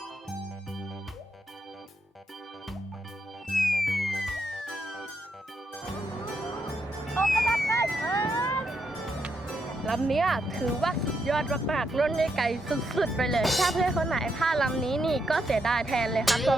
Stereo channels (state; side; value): normal; both; correlation 0.80